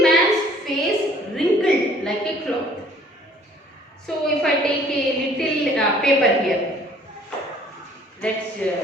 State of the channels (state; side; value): normal; both; correlation 0.56